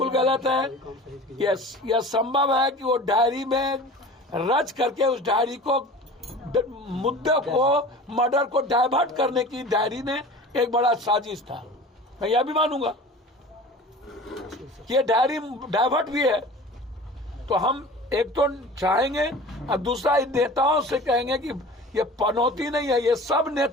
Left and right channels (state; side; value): normal; both; correlation 0.39